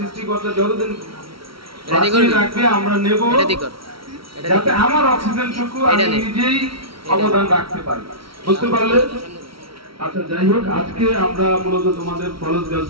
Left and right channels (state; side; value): late; left; 0.75 ms